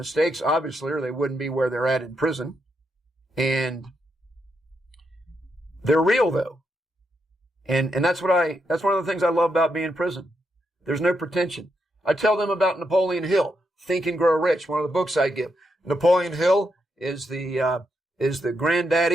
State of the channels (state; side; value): normal; both; correlation 0.82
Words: obviously, or they wouldn't be where they're at in prison. And they're real, though. And that's one of the things I love about being in prison. There's no pretension. I tell them about Napoleon Hill, Think and Grow Rich, one of the books I give. Napoleon Hill is the